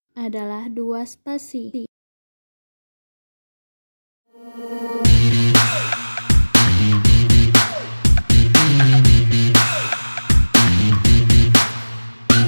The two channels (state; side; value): inverted; both; correlation -1.00